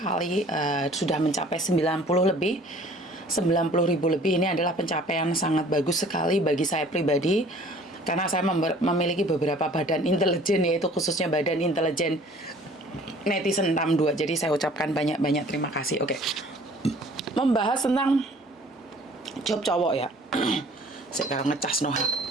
sudah mencapai 90 lebih, 90.000 lebih. Ini adalah pencapaian sangat bagus sekali bagi saya pribadi, karena saya memiliki beberapa badan intelijen, yaitu khususnya badan intelijen netizen 62. Jadi saya ucapkan banyak-banyak terima kasih. Oke, membahas tentang job cowok ya. Sekarang ngecas no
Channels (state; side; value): normal; both; correlation 0.52